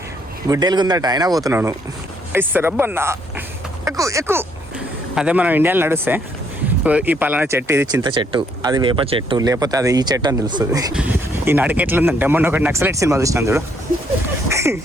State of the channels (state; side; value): normal; both; correlation 0.69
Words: గుడ్డెలుగుందట అయినా పోతున్నాను రబ్బన్నా ఎక్కువ ఎక్కువ. అదే మనం ఇండియాలో నడుస్తే ఈ పలానా చెట్టు ఇది చింత చెట్టు, అది వేప చెట్టు, లేకపోతే అది ఈ చెట్టు అని తెలుస్తుంది. ఈ నడికి ఎట్లుందంటే మొన్న ఒకటి నక్సలైట్ సినిమా చూసినాను చూడు,